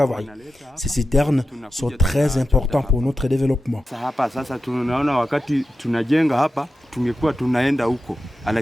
Ces citernes sont très importantes pour notre développement.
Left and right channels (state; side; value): normal; both; correlation 0.91